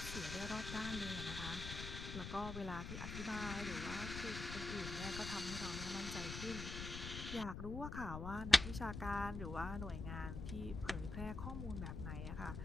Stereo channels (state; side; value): noise; left; rumble, 6 dB below the sound